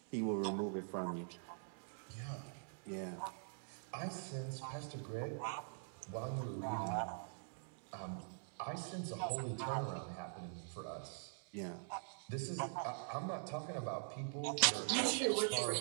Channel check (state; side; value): silent; left; digital silence